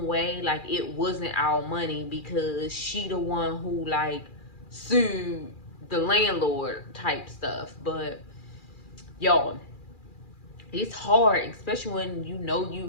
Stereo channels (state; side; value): late; right; 2.4 ms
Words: way like it wasn't our money because she the one who like sued the landlord type stuff. But y'all, it's hard, especially when you know